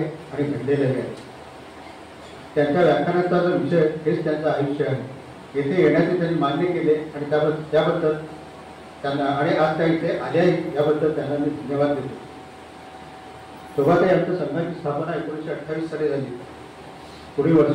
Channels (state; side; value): identical; both; correlation 1.00